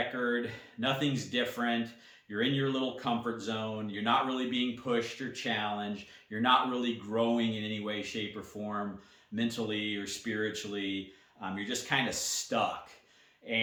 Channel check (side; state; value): both; identical; correlation 1.00